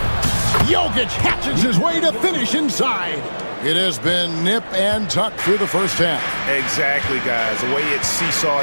Jokic hatches his way to finish inside. It has been nip and tuck through the first half. Exactly, guys. The way it's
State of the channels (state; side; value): inverted; both; correlation -1.00